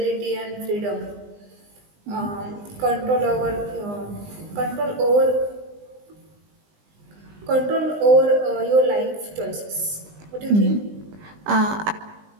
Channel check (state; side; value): late; left; 20 ms